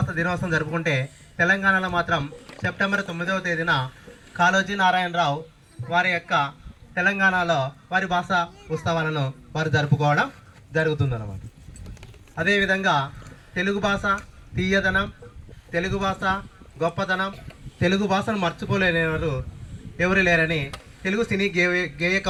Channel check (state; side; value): identical; both; correlation 1.00